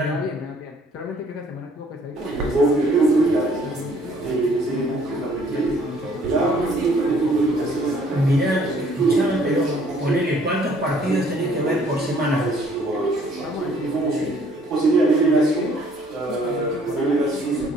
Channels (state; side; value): normal; both; correlation 0.60